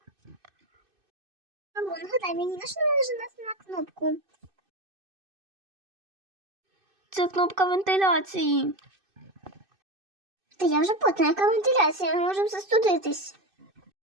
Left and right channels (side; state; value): left; late; 2.6 ms